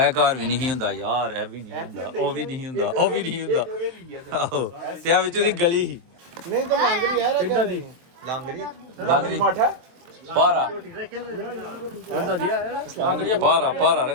ਘਰ ਵੀ ਨਹੀਂ ਹੁੰਦਾ ਯਾਰ ਇਹ ਵੀ ਨਹੀਂ ਹੁੰਦਾ ਉਹ ਵੀ ਨਹੀਂ ਹੁੰਦਾ ਉਹ ਵੀ ਨਹੀਂ ਹੁੰਦਾ ਆਹੋ ਤੇ ਆ ਵਿੱਚ ਉਹਦੀ ਗਲੀ ਸੀ ਲਾਂਗਰੀ माठा ਪਾਰਾ ਪਾਰਾ ਪਾਰਾ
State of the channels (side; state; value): left; late; 23 ms